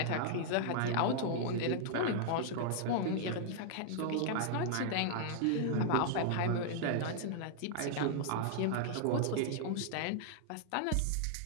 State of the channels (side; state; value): both; different; correlation -0.01